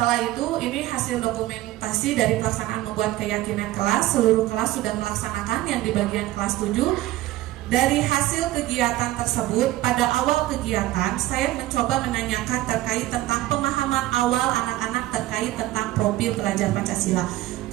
itu, ini hasil dokumentasi dari pelaksanaan membuat keyakinan kelas. Seluruh kelas sudah melaksanakan yang di bagian kelas 7. Dari hasil kegiatan tersebut, pada awal kegiatan saya mencoba menanyakan terkait tentang pemahaman awal anak-anak terkait tentang profil pelajar Pancasila.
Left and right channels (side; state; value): left; quieter; 16.2 dB